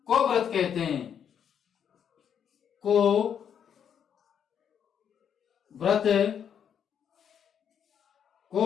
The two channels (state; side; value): quieter; right; 8.3 dB